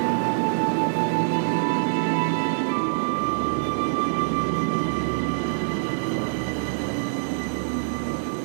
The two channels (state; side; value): silent; left; digital silence